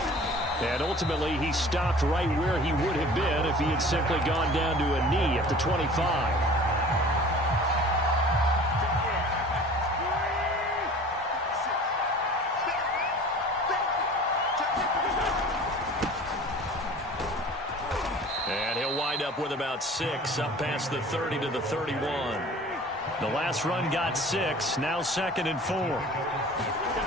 And ultimately, he stopped right where he would have been if he had simply gone down to a knee at the 25. And he'll wind up with about 6, up past the 30 to the 31. The last run got 6, now 2nd and 4.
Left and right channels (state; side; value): normal; both; correlation 0.44